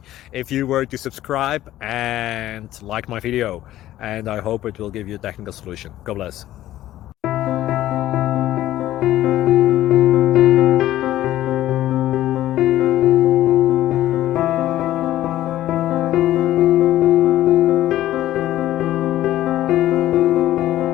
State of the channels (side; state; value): right; quieter; 14.0 dB